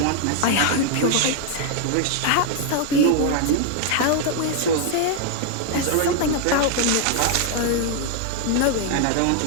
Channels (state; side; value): different; both; correlation 0.00